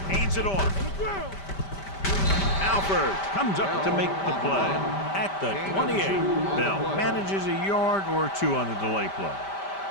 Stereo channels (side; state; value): right; late; 5.1 ms